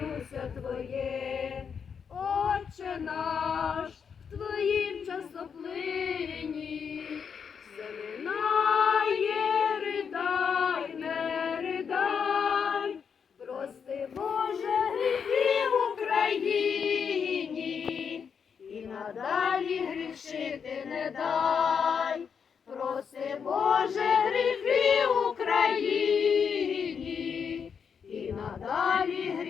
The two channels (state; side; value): quieter; right; 6.7 dB